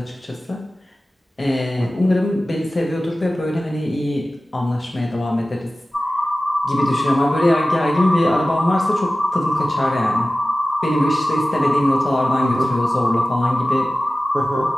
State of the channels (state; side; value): normal; both; correlation 0.96